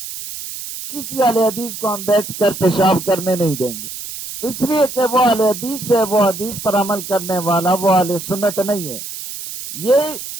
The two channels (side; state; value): right; noise; hiss, 9 dB below the sound